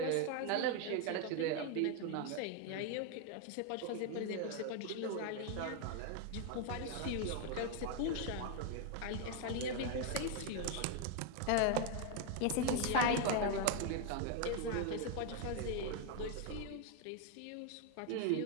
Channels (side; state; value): both; different; correlation 0.01